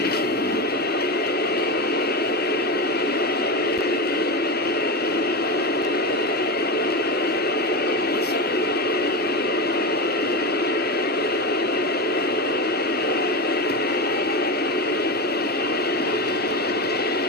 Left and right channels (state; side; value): normal; both; correlation 0.18